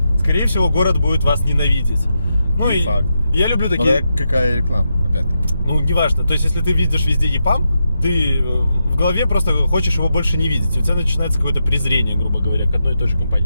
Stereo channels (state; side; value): inverted; both; correlation -0.85